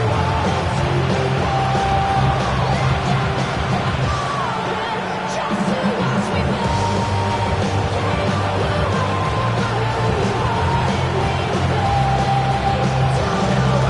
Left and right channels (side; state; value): both; identical; correlation 1.00